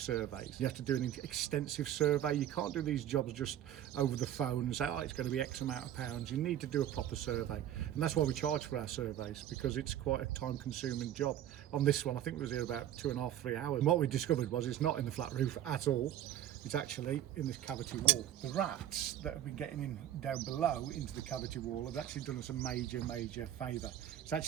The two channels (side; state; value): left; quieter; 11.4 dB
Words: You have to do an extensive survey. You can't do these jobs just over the phone and say, oh, it's going to be X amount of pounds. You need to do a proper survey. And that's why we charge for our surveys, because it's quite a time-consuming job. On this one, I think it was here about 2.5, 3 hours. And what we discovered was it's not in the flat roof at all. It's actually in this cavity wall. The rats that have been getting in down below into the cavity wall have actually done us a major favour. It's